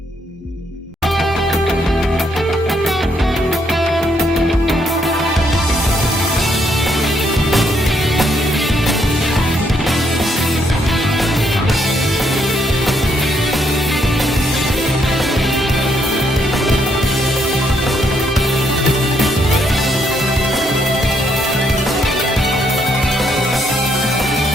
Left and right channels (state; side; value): normal; both; correlation 0.73